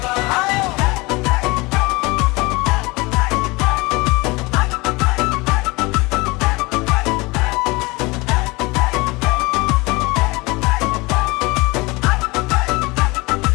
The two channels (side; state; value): right; quieter; 24.3 dB